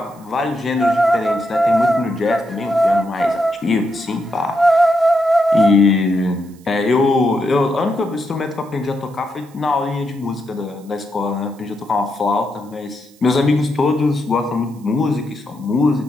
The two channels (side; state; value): right; noise; hiss, 28 dB below the sound